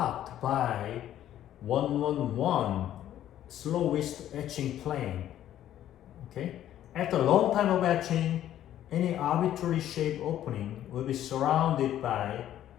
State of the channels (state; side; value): quieter; right; 11.8 dB